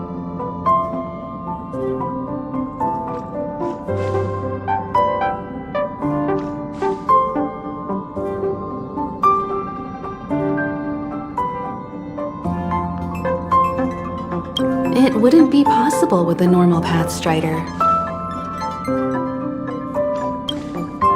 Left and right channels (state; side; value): identical; both; correlation 1.00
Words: It wouldn't be possible with a normal Path Strider.